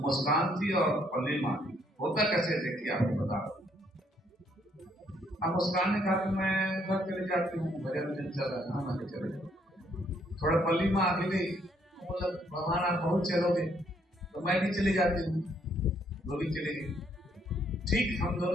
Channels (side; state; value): both; normal; correlation 0.69